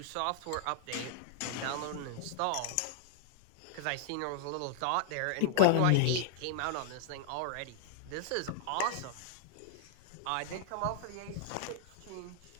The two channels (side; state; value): both; different; correlation -0.01